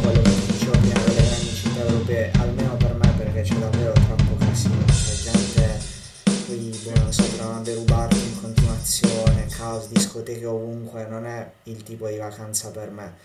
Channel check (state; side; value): identical; both; correlation 1.00